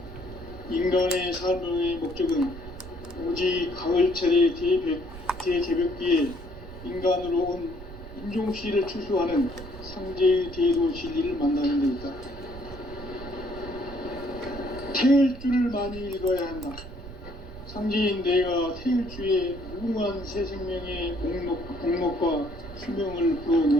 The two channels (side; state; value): right; noise; rumble, 14 dB below the sound